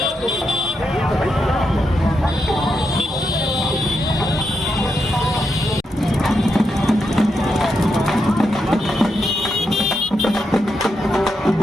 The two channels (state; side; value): normal; both; correlation 0.84